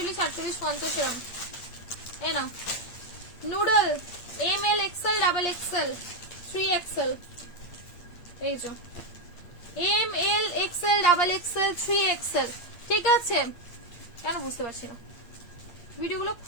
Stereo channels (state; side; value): late; right; 8.7 ms